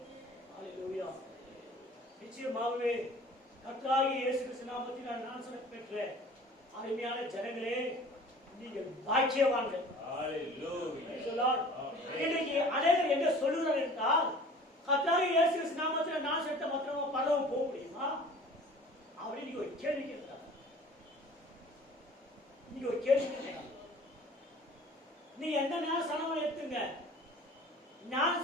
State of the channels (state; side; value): normal; both; correlation 0.46